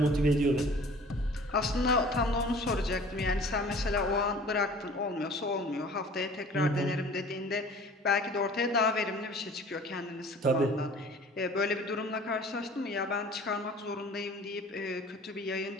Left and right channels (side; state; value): both; normal; correlation 0.47